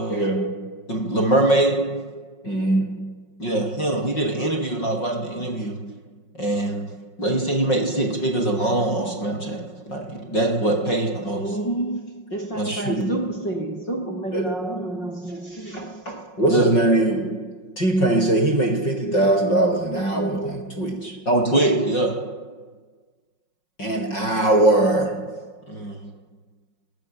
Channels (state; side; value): late; right; 5.5 ms